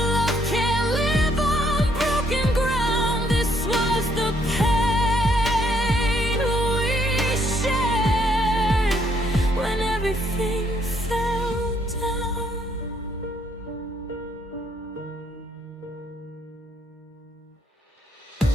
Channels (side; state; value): both; normal; correlation 0.70